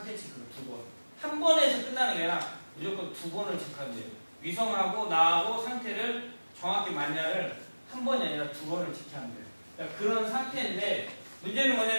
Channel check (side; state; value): both; inverted; correlation -1.00